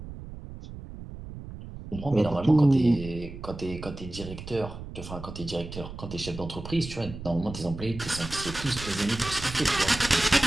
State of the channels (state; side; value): noise; right; rumble, 11 dB below the sound